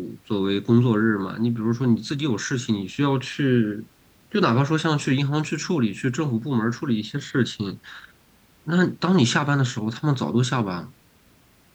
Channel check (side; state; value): both; identical; correlation 1.00